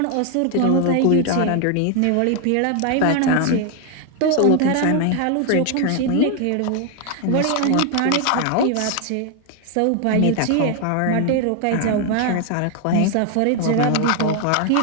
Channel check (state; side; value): different; both; correlation 0.01